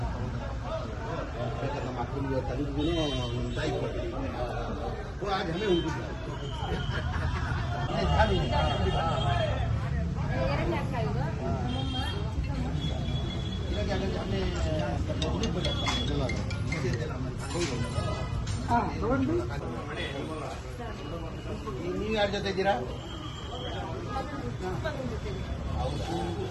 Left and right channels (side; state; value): both; identical; correlation 1.00